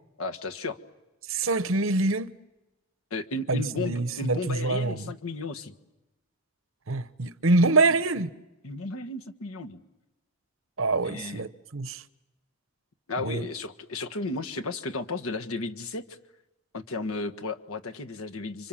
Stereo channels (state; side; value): normal; both; correlation 0.07